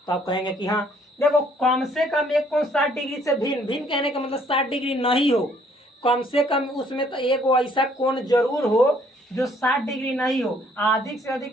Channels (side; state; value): both; normal; correlation 0.63